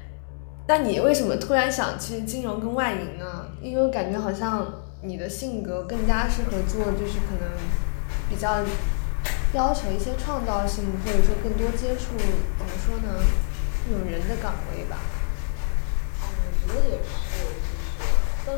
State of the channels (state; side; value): silent; right; digital silence